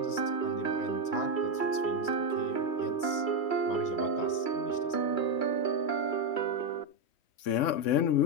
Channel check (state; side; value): late; right; 3.1 ms